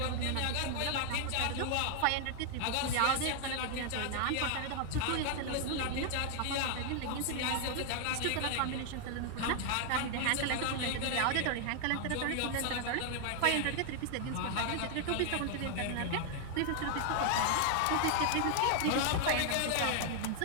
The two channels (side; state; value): both; different; correlation 0.00